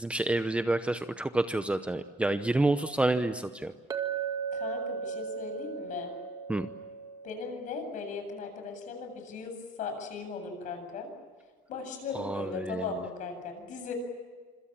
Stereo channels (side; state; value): both; normal; correlation 0.67